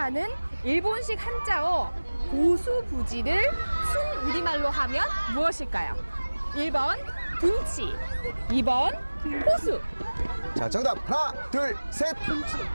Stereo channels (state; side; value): inverted; both; correlation -1.00